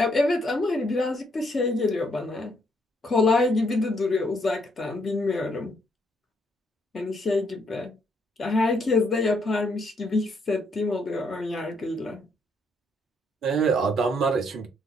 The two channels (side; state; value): both; normal; correlation 0.72